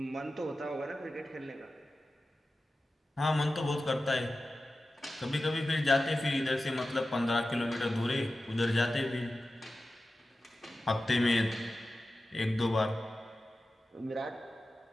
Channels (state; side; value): normal; both; correlation 0.94